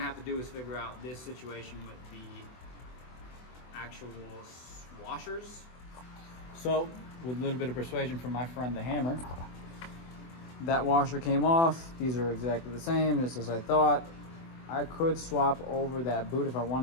have to do is figure out this situation with the actual washers. So with a little bit of persuasion from my friend the hammer, that washer came off. These are exactly the same, just as I thought. I could swap over that boot if I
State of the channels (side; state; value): right; late; 24 ms